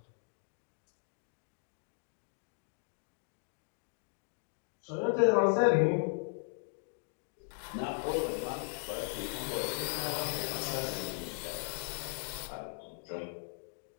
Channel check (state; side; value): silent; right; digital silence